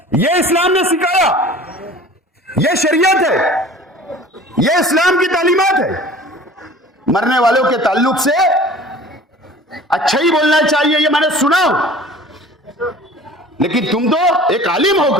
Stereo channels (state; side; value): normal; both; correlation 0.44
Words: ये इस्लाम ने सिखाया, ये शरीयत है, ये इस्लाम की तालीमात है। मरने वालों के ताल्लुक से अच्छा ही बोलना चाहिए, ये मैंने सुना। लेकिन तुम तो एक आलिम